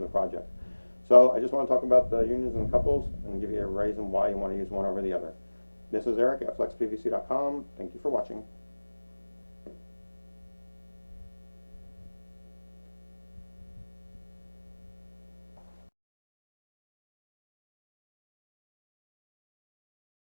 the project. So I just want to talk about the unions and the couples and give you a reason why you want to use one over the other. This is Eric at FlexPVC.com. Thank you for watching.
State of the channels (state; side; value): inverted; both; correlation -1.00